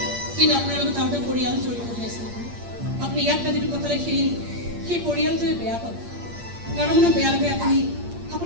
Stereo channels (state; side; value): late; left; 8.6 ms